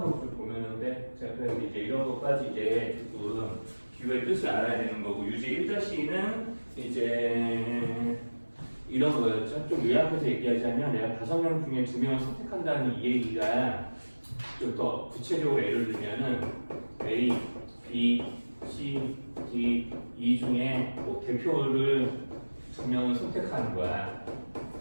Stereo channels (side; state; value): both; inverted; correlation -1.00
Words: 보면은 돼. 자, 그래서 이제 이런 것까지 이제 조금 기호의 뜻을 알아야 되는 거고 유제 1-는 이제 이런 거였죠. 좀 요약해서 얘기하자면 내가 5명 중에 2명을 선택한다는 이 얘기가 좀 더 구체적으로 예를 들면은 A, B, C, D, E 중에 뭐 대표를 2명을 선택하는 거야.